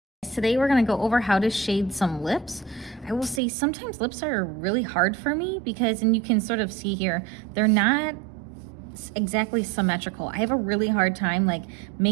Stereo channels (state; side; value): drops out; left; at 3.4 s